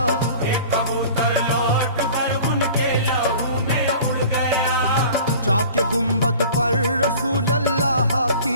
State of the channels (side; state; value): both; inverted; correlation -0.44